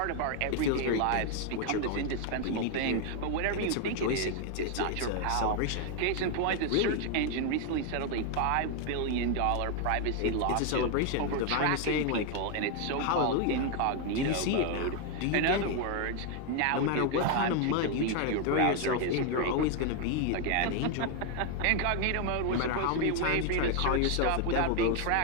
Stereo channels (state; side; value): different; both; correlation 0.01